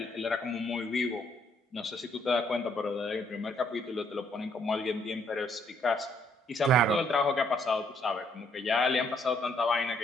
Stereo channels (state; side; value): normal; both; correlation 0.68